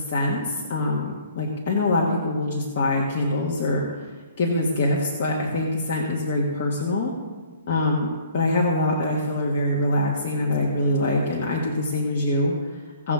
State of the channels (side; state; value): both; inverted; correlation -0.56